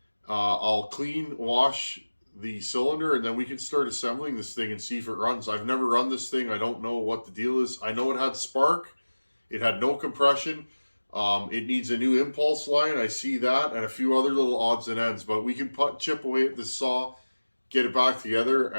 I'll clean, wash the cylinder, and then we can start assembling this thing and see if it runs. I've never run this thing. I don't know what the deal is. I know it had spark. It had no compression. It needs a new impulse line. I see that, and a few other little odds and ends. But we can chip away at this saw, get it back together,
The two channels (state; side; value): inverted; both; correlation -1.00